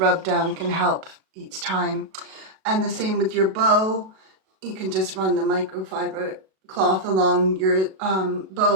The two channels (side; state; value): left; late; 37 ms